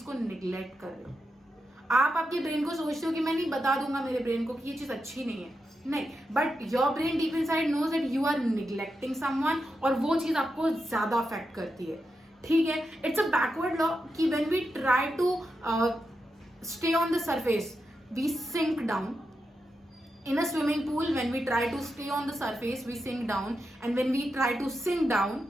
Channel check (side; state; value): both; normal; correlation 0.87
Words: को निग्लेक्ट कर रहे हो. आप आपके ब्रेन को सोचते हो कि मैं नहीं बता दूंगा मेरे ब्रेन को कि ये चीज अच्छी नहीं है. नहीं, but your brain deep inside knows that you are neglecting someone और वो चीज आपको ज्यादा अफेक्ट करती है. ठीक है, इट्स अ बैकवर्ड लॉ कि when we try to stay on the surface we sink down. In a swimming pool, when we try to stay on the surface, we sink down, and when we try to sink down,